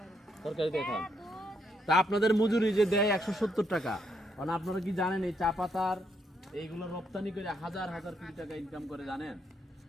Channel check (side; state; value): both; normal; correlation 0.76